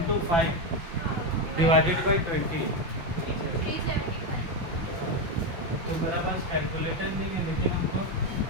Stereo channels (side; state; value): left; late; 5.8 ms